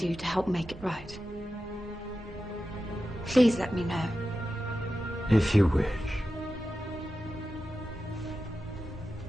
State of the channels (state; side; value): normal; both; correlation 0.92